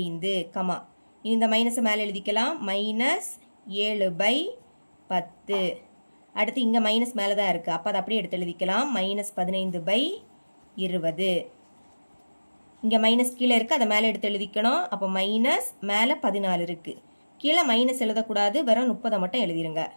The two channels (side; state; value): both; inverted; correlation -1.00